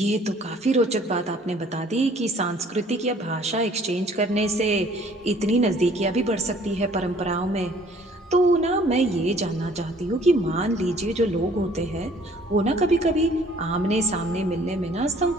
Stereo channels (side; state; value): both; normal; correlation 0.56